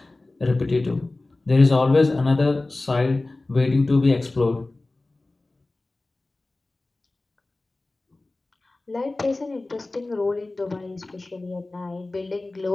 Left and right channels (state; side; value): quieter; right; 3.0 dB